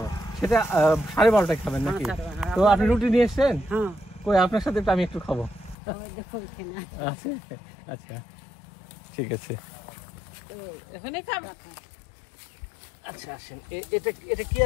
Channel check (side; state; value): right; drops out; at 5.8 s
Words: সেটা 12:30টায় খাবেন নাকি? হ্যাঁ, তো আপনি রুটি নিয়ে এসছেন? হ্যাঁ, কই, আপনার সাথে তো আমি একটু খাবো। ওই দেখো এখানে আছে। আছে? আচ্ছা, ঠিক আছে। তো এখানে খাবো। আচ্ছা, আসেন। এটা এটা কি